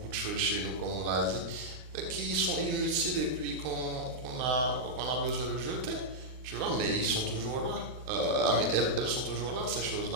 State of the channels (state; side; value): late; left; 39 ms